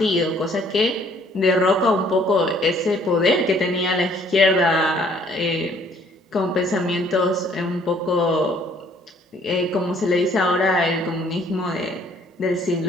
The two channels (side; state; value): both; normal; correlation 0.61